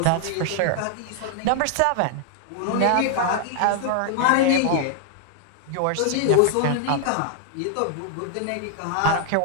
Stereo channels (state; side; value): different; both; correlation 0.00